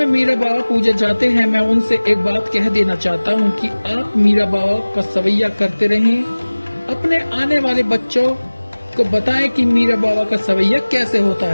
मीरा बाबा पूजा जाते हैं, मैं उनसे एक बात कह देना चाहता हूं कि आप मीरा बाबा का सवैया करते रहें। अपने आने वाले बच्चों को बताएं कि मीरा बाबा का सवैया कैसे होता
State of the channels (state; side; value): inverted; both; correlation -1.00